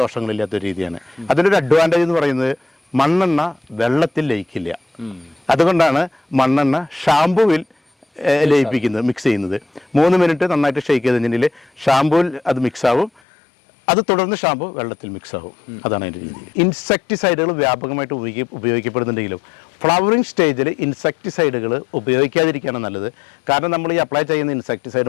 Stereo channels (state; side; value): drops out; right; at 13.2 s